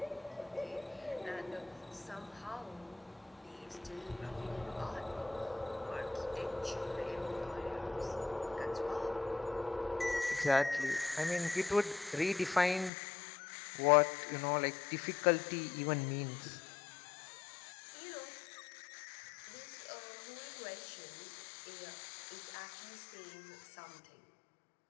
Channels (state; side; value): drops out; right; at 12.9 s